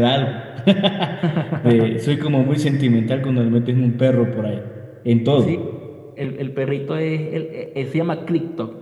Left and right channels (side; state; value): both; identical; correlation 1.00